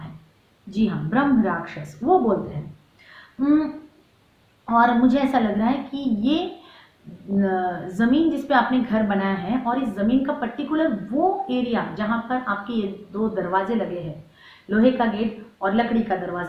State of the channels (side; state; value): both; identical; correlation 1.00